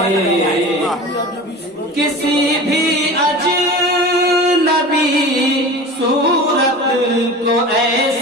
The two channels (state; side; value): normal; both; correlation 0.34